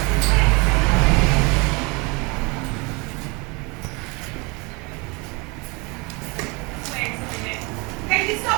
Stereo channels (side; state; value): left; quieter; 28.4 dB